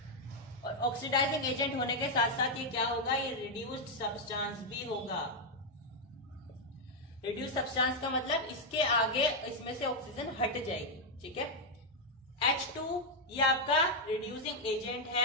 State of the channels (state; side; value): normal; both; correlation 0.00